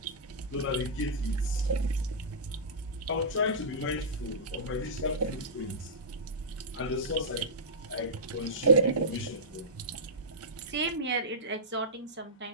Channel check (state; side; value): normal; both; correlation -0.16